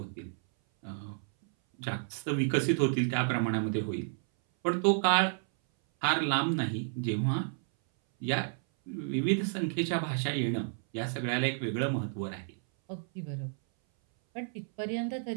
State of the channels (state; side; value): silent; left; 57 dB below the other